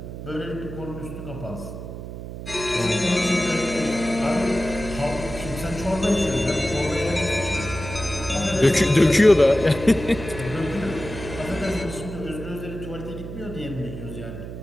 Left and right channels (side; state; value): right; noise; hum, 10 dB below the sound